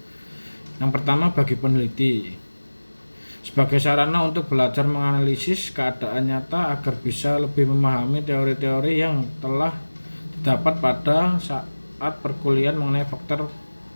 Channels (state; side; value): inverted; both; correlation -1.00